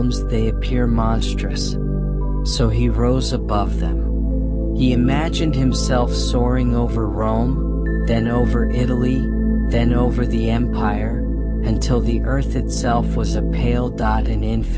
they appear monstrous. So he rose above them. He imagined himself soaring over Rome, then over Italy, then over the empire, until the earth itself was a pale dot in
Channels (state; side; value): identical; both; correlation 1.00